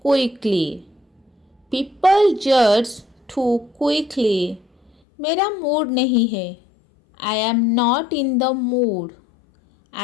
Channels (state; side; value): drops out; right; at 4.9 s